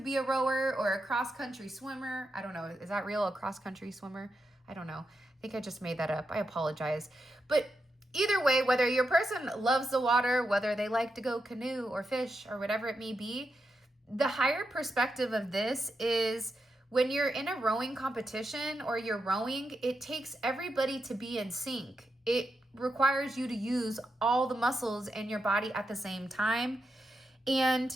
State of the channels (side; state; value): both; normal; correlation 0.86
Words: be a rower or a cross-country swimmer. I don't know. Is that real, a cross-country swimmer? I don't know. I think I just made that up. I apologize. But either way, whether your person loves the water, whether they like to go canoe or fish or whatever it may be, the higher perspective of this is when you're in a rowing competition or you're rowing, it takes everybody to be in sync. It requires you to use all the muscles in your body at the same time. And